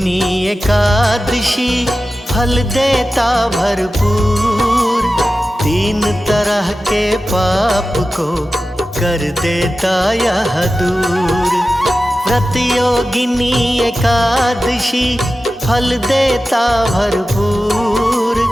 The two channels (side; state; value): both; normal; correlation 0.94